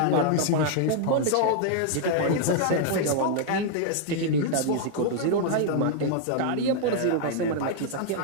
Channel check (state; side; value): different; both; correlation -0.01